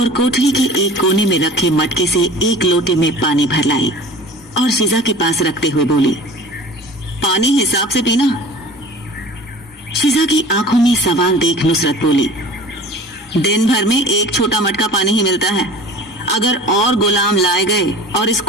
कोठरी के एक कोने में रखे मटके से एक लोटे में पानी भर लाई और शिजा के पास रखते हुए बोली, पानी हिसाब से पीना। शिजा की आंखों में सवाल देख नुसरत बोली, दिन भर में एक छोटा मटका पानी ही मिलता है। अगर और गुलाम लाए गए और इस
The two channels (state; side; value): normal; both; correlation 0.42